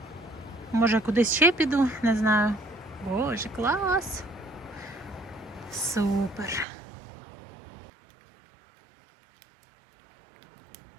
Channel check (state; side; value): drops out; left; at 6.7 s